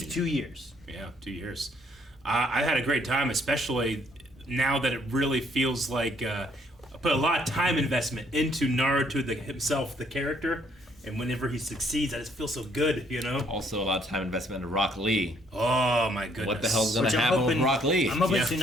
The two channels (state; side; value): normal; both; correlation 0.66